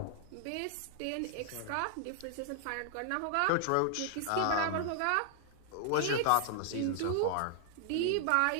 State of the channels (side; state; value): both; different; correlation 0.00